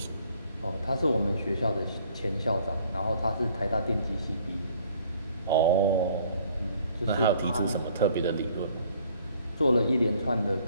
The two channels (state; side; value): inverted; both; correlation -0.59